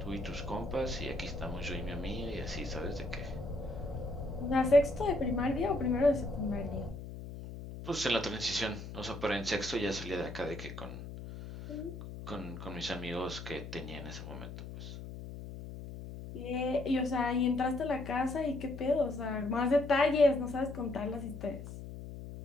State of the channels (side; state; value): left; noise; hum, 10 dB below the sound